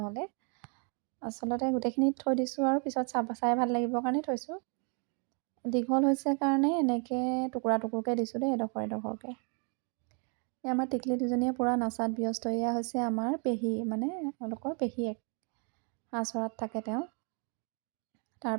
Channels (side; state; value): left; quieter; 37.8 dB